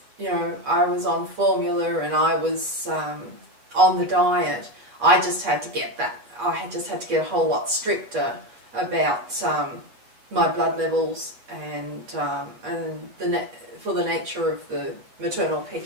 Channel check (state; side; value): late; left; 8.5 ms